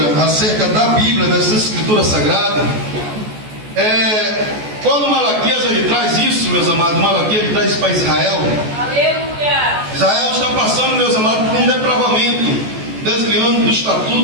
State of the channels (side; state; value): left; late; 14 ms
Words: acerca da Bíblia, dessa Escritura Sagrada, quando Malaquias ele traz isso, meus amados, Malaquias ele traz isso para Israel. Aleluia. Israel está passando, meus amados, por um depravamento, desviando do